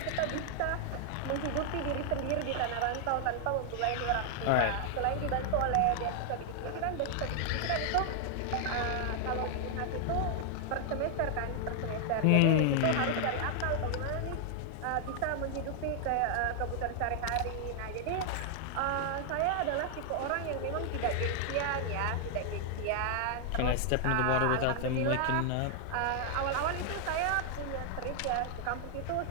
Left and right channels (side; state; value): both; different; correlation 0.00